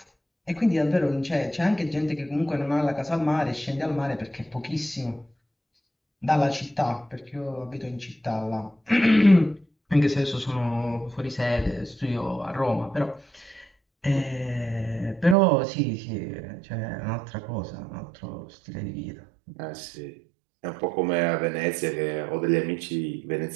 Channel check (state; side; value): drops out; left; at 15.4 s